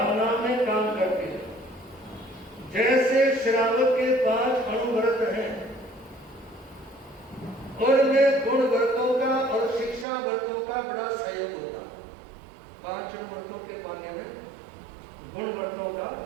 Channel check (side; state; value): left; drops out; at 10.1 s